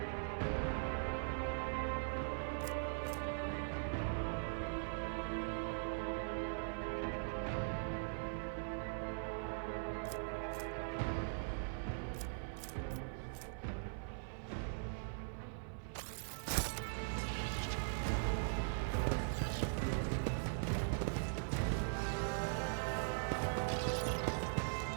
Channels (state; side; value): silent; left; 50 dB below the other